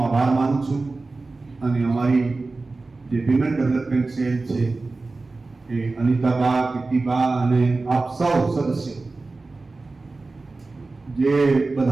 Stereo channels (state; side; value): quieter; left; 3.5 dB